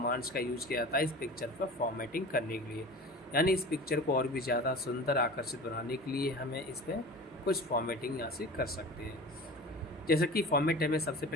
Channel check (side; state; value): both; normal; correlation 0.37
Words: का यूज़ किया जाता है इस पिक्चर पर फॉर्मेटिंग करने के लिए। यानी इस पिक्चर को और भी ज़्यादा सुंदर, आकर्षित बनाने के लिए हमें इस पर कुछ फॉर्मेटिंग यहाँ से कर सकते हैं। जैसे कि फॉर्मेट टैब में सबसे